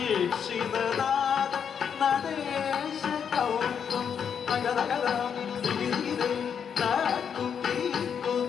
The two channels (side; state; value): right; quieter; 7.4 dB